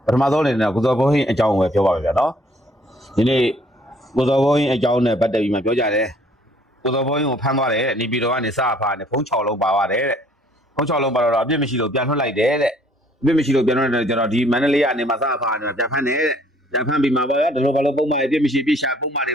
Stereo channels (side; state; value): both; normal; correlation 0.60